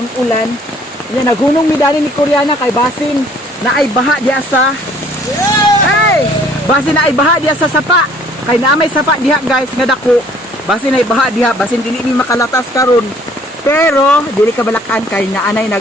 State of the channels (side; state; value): both; normal; correlation 0.58